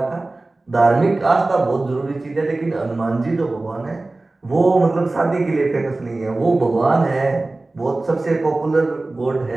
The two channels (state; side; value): quieter; left; 3.1 dB